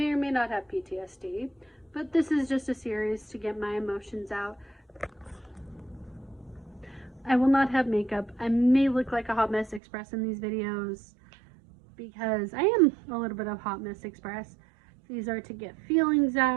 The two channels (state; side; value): drops out; left; at 9.8 s